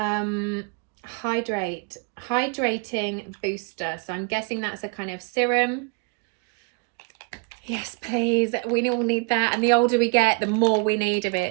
Hydrating booster. So I'm guessing that's a kind of serum. Yes, please. We all need that. And the older we get, the more we need of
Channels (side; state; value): left; quieter; 32.1 dB